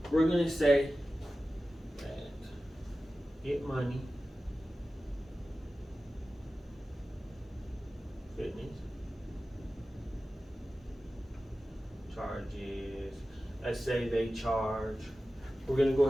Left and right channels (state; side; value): normal; both; correlation 0.95